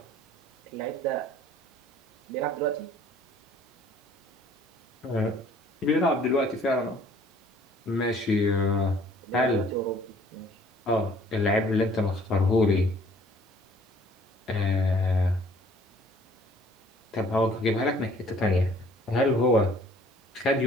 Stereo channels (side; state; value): both; normal; correlation 0.56